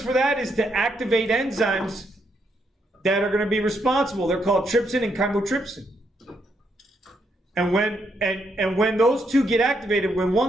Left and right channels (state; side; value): normal; both; correlation 0.77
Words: for that is to activate enzymes that are going to be responsible. They're called trypsin and chymotrypsin. And when those two get activated, when